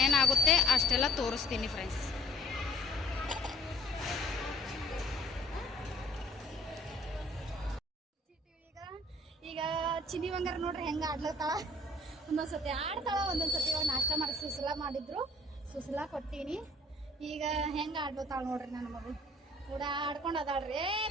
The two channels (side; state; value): both; normal; correlation 0.57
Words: ಅಷ್ಟೆಲ್ಲ ತೋರಿಸ್ತೀನಿ ಫ್ರೆಂಡ್ಸ್. ಈಗ ಚಿನ್ನಿ ಬಂಗಾರ ನೋಡ್ರಿ ಹೆಂಗೆ ಆಡ್ಲತ್ತಾಳ. ಒಂದೊಂದ್ಸತಿ ಆಡ್ತಾಳ, ಒಂದೊಂದ್ಸತಿ ಇವಾಗ ನಾಷ್ಟ ಮಾಡಿ ಸುಸಲಾ ಮಾಡಿದ್ರು, ಸುಸಲಾ ಕೊಟ್ಟೀನಿ. ಈಗ ಹೆಂಗೆ ಆಡ್ಲತ್ತಾಳ ನೋಡ್ರಿ ನನ್ನ ಮಗಳು ಕೂಡ ಆಡ್ಕೊಂಡು ಅದಾಳ್ರಿ.